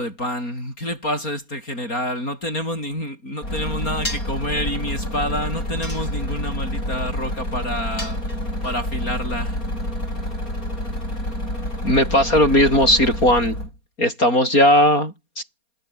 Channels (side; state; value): right; late; 4.3 ms